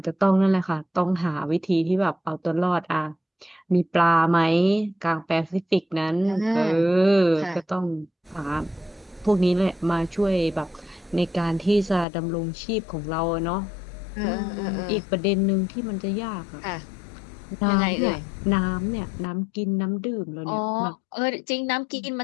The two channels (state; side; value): drops out; right; at 12.1 s